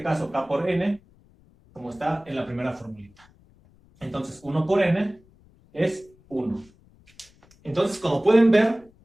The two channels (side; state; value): left; noise; rumble, 29 dB below the sound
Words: caso k por n, como está en la primera formulita. Entonces 1 por n es 1. Entonces, como pueden ver,